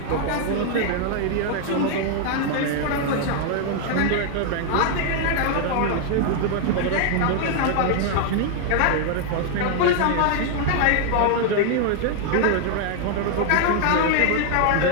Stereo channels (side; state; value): both; different; correlation 0.00